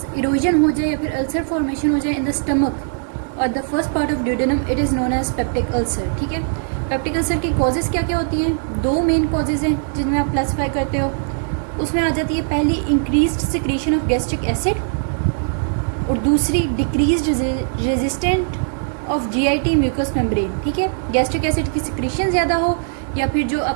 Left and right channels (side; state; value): left; silent; 58 dB below the other